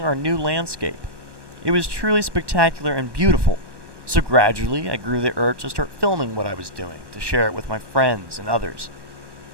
our new landscape. It was truly spectacular and beautiful, so gradually I grew the urge to start filming what I was doing, to share it with my friends and others.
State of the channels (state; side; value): late; left; 1.2 ms